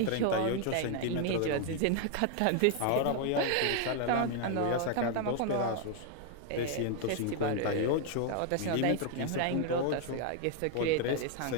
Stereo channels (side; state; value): both; different; correlation 0.00